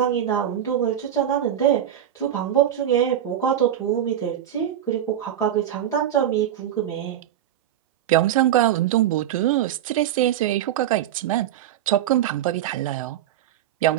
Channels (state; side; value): quieter; left; 11.0 dB